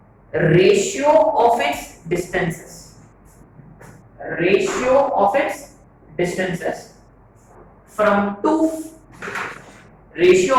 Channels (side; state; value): both; identical; correlation 1.00